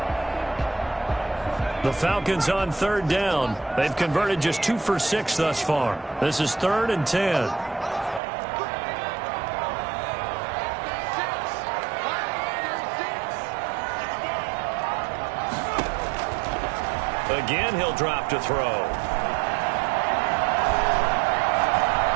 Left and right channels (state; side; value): drops out; left; at 8.2 s